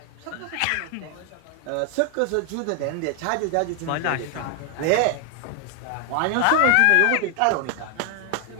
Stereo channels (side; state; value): both; different; correlation 0.00